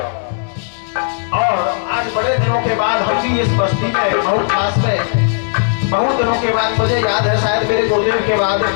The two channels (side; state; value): right; silent; digital silence